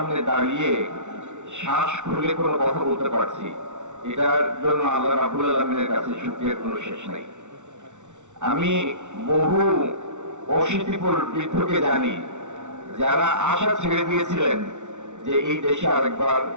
দাঁড়িয়ে শ্বাস খুলে কোনো কথা বলতে পারছি, এটার জন্য আল্লাহ রাব্বুল আলামিনের কাছে শুকরিয়ার কোনো শেষ নাই। আমি বহু অশীতিপর বৃদ্ধকে জানি যারা আশা ছেড়ে দিয়েছিলেন যে এই দেশে আরেকবার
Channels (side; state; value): left; late; 0.84 ms